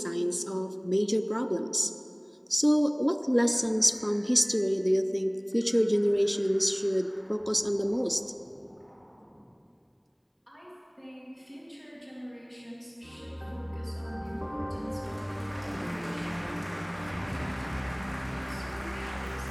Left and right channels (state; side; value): identical; both; correlation 1.00